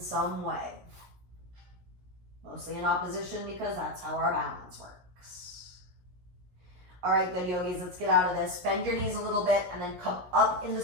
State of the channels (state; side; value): late; left; 17 ms